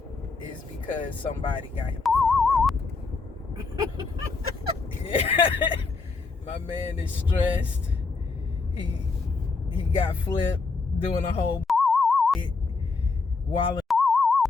is because somebody got him yeah. My man is stressed. He got flipped doing a whole wilding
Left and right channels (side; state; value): right; quieter; 4.2 dB